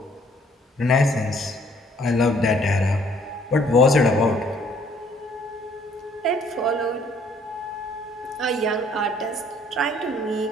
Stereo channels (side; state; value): both; normal; correlation 0.61